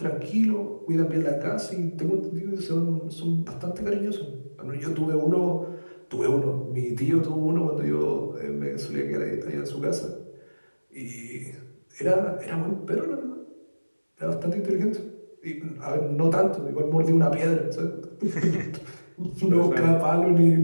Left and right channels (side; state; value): both; inverted; correlation -1.00